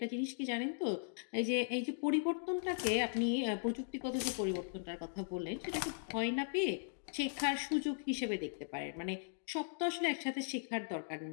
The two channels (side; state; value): right; silent; digital silence